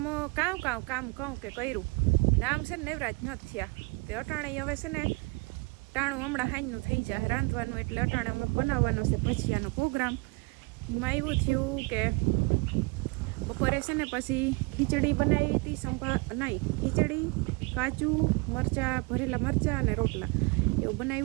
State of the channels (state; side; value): quieter; left; 28.4 dB